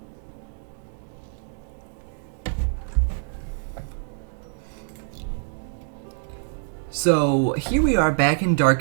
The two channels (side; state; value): left; silent; digital silence